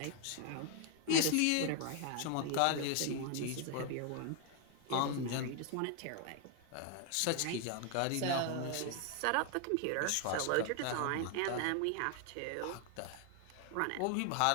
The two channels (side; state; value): both; different; correlation 0.00